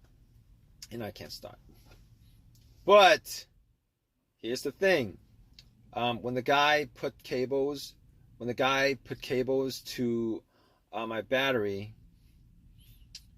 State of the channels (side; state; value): both; identical; correlation 1.00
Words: and I can't start. But here's the thing: when the guy put cables to my battery,